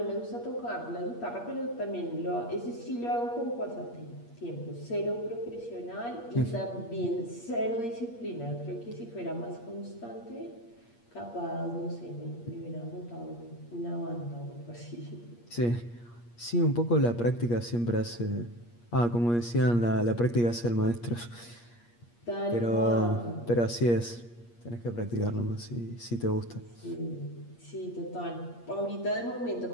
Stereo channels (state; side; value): late; right; 8.5 ms